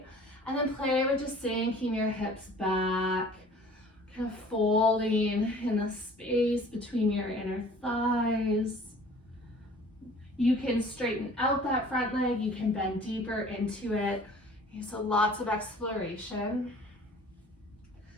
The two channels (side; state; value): both; normal; correlation 0.49